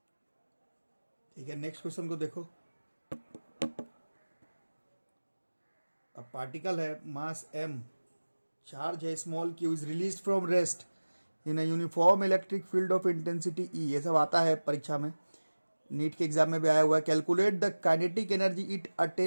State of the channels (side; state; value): both; inverted; correlation -1.00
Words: ठीक है, नेक्स्ट क्वेश्चन को देखो। अब पार्टिकल है, मास m, चार्ज है small q, is release from rest in a uniform electric field of intensity E, ये सब आता है परीक्षा में, नीट के एग्जाम में भी आया हुआ है। Calculate the kinetic energy it